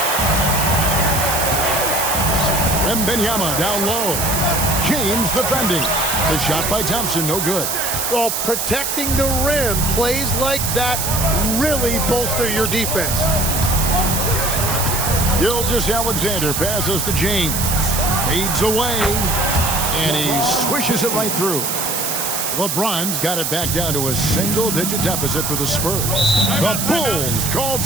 Wembanyama down low. James defending. The shot by Thompson, no good. Well, protecting the rim, plays like that really bolster your defense. Gilgeous-Alexander passes to James. Fades away. And he swishes it right through. LeBron's got it back down to a single-digit deficit for the Spurs. The Bulls call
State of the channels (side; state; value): right; noise; hiss, 1 dB below the sound